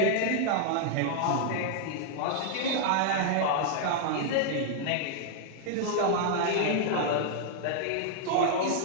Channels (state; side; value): different; both; correlation 0.00